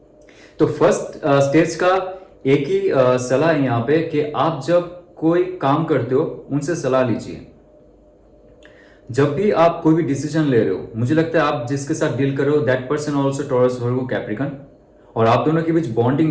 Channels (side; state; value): both; identical; correlation 1.00